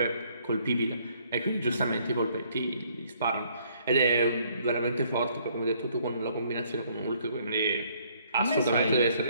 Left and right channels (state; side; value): inverted; both; correlation -0.65